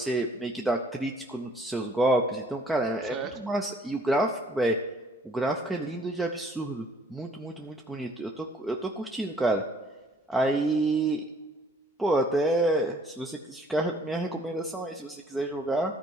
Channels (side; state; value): both; normal; correlation 0.59